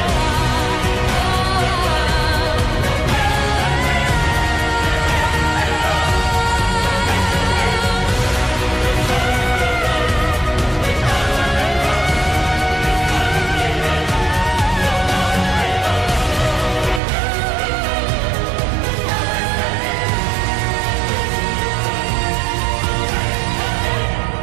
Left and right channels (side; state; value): left; drops out; at 17.0 s